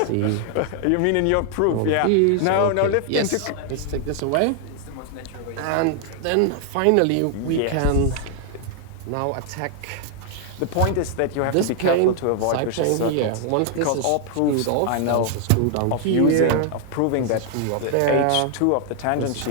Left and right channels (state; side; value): different; both; correlation 0.00